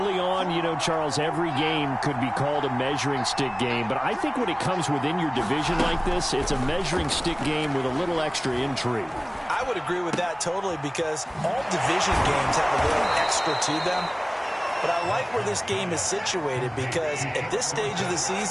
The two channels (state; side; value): identical; both; correlation 1.00